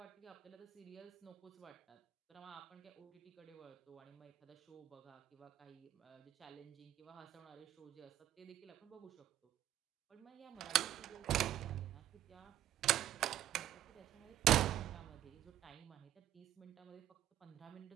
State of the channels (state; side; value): quieter; left; 12.2 dB